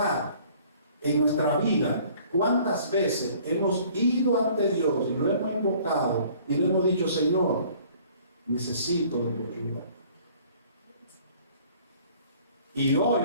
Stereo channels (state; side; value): inverted; both; correlation -0.54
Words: en nuestra vida cuántas veces hemos ido ante Dios y lo hemos invocado y le hemos dicho: Señor, necesito de tu ayuda. Y hoy